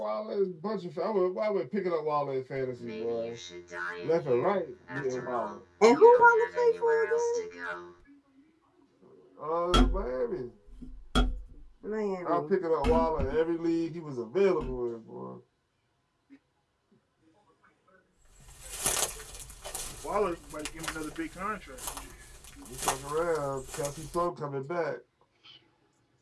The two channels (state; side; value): identical; both; correlation 1.00